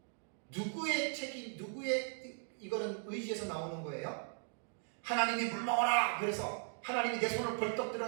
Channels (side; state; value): left; silent; 52 dB below the other